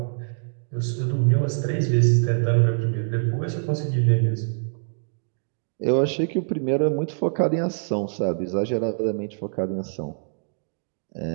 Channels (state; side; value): silent; left; digital silence